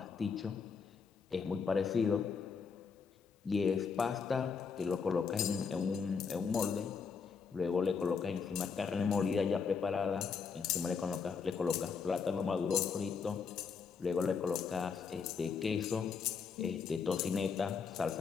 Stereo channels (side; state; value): right; quieter; 5.8 dB